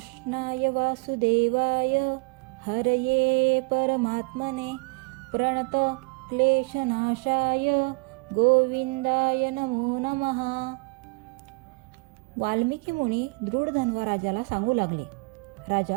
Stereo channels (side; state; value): left; quieter; 29.7 dB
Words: वासुदेवाय हरये परमात्मने प्रणत क्लेशनाशाय गोविंदाय नमो नमः। वाल्मिकी मुनी दृढ धन्वराजाला सांगू लागले,